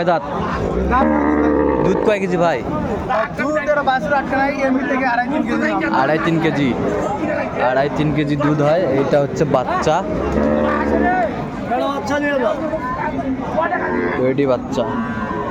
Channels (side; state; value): both; identical; correlation 1.00